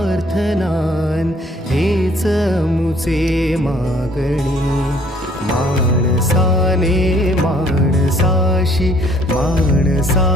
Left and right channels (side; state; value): both; normal; correlation 0.60